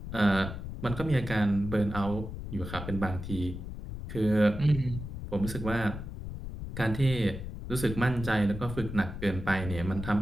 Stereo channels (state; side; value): noise; left; rumble, 8 dB below the sound